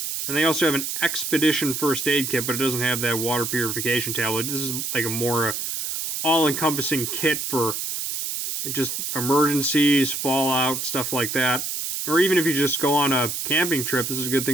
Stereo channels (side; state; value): right; noise; hiss, 3 dB below the sound